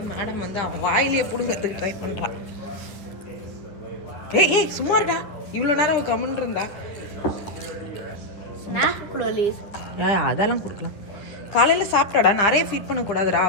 மேடம் வந்து அவன் வாயிலேயே பிடுங்கிறதுக்கு ட்ரை பண்ணுறான். ஏய் சும்மா இருக்கா? இவ்வளோ நேரம் அவன் கம்முன்னு இருந்தா. அதெல்லாம் கொடுக்கலாம். காலையில் சாப்பிட்டாடா, நிறைய ஃபீட் பண்ணக்கூடாதுடா,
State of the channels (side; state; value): right; late; 10 ms